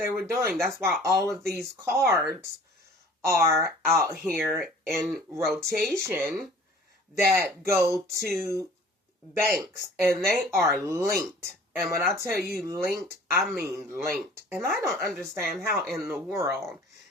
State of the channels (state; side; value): normal; both; correlation 0.48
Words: were doing. That's why all of these cards are out here in rotation that go to banks, and they are linked. And when I tell you linked, I mean linked. And I don't understand how in the world